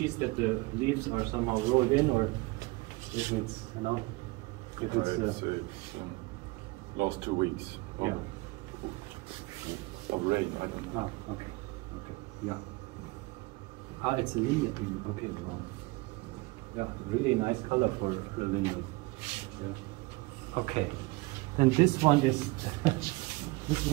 that the leaves are somehow rolled in, or if it's it's last 2 weeks of, of rain. I don't know. Okay, yeah. It's a linden. Okay, wow. Yeah, really nice color for the linden. Yeah. Okay, then this one is this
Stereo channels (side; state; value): left; quieter; 23.7 dB